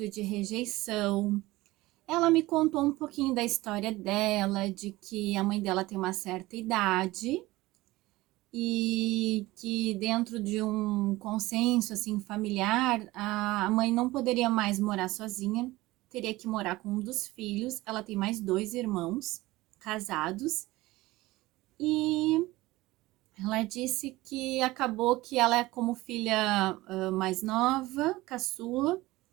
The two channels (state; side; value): quieter; left; 19.1 dB